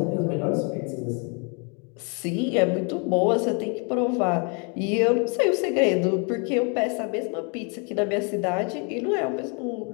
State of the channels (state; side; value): quieter; right; 35.8 dB